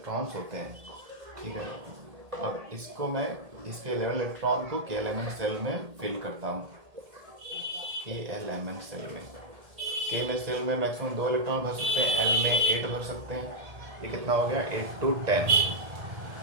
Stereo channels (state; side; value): late; left; 1.7 ms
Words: होते हैं। ठीक है, अब इसको मैं, इसके 11 इलेक्ट्रॉन को के एलिमेंट सेल में फिल करता हूँ, के एलिमेंट सेल में। के में सेल में मैक्सिमम 2 इलेक्ट्रॉन भर सकते हैं, एल में 8 भर सकते हैं। ये कितना हो गया, 8 to 10,